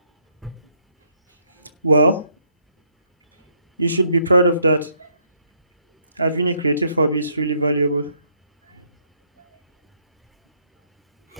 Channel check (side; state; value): both; inverted; correlation -0.71